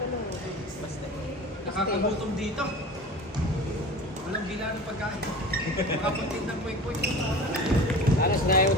Nakakagutom dito. Walang bila ng pagkain. Makapagtid ng kwek-kwek. Alas na yun,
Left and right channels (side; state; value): both; normal; correlation 0.36